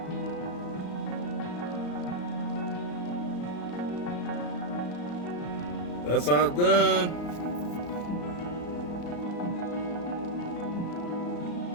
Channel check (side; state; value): right; late; 34 ms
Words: That's how it's done.